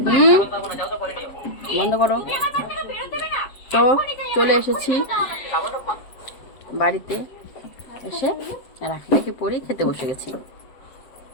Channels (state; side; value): late; right; 7.6 ms